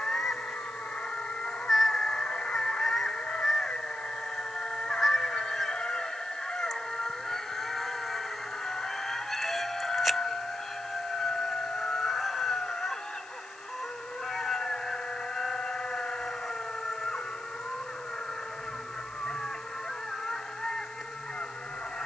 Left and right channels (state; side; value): noise; left; hiss, 23 dB below the sound